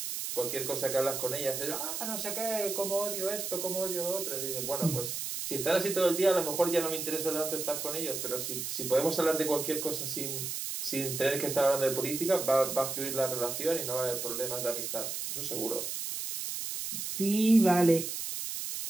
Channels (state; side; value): noise; right; hiss, 4 dB below the sound